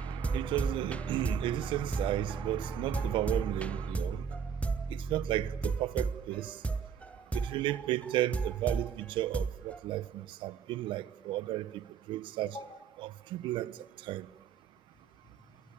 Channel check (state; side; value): quieter; left; 7.9 dB